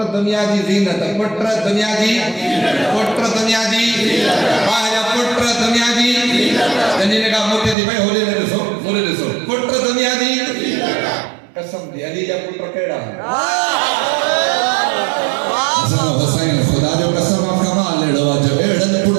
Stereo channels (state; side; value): drops out; left; at 7.8 s